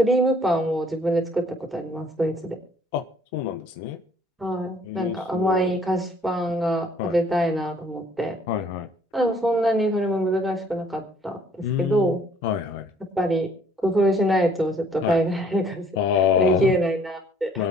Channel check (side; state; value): both; normal; correlation 0.59